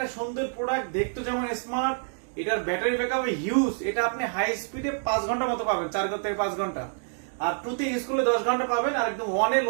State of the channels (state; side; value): silent; left; digital silence